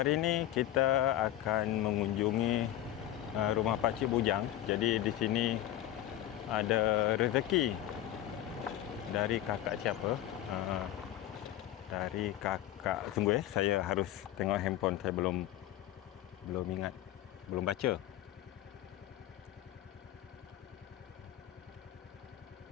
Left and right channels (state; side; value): quieter; right; 12.9 dB